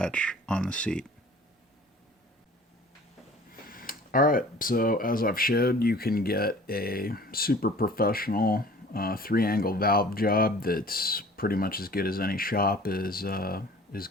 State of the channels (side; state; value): both; normal; correlation 0.48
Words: on the seat. Alright, so as I've showed, you can get a super professional 3-angle valve job that's pretty much as good as any shop is